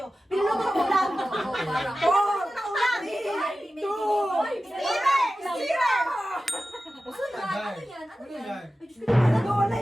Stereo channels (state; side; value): normal; both; correlation 0.94